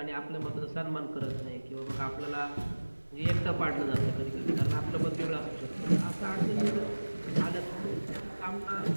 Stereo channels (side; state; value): both; inverted; correlation -1.00